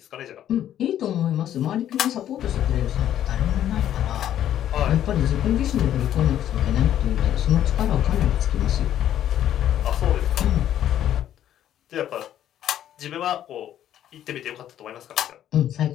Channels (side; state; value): right; quieter; 11.2 dB